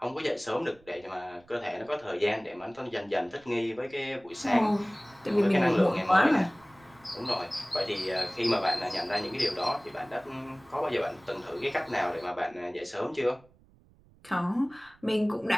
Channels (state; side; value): noise; right; rumble, 28 dB below the sound